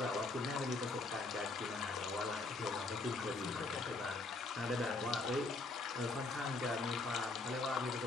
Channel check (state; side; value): quieter; right; 3.4 dB